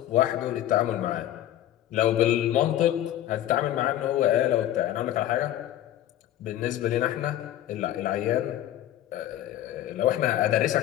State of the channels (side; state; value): right; quieter; 12.7 dB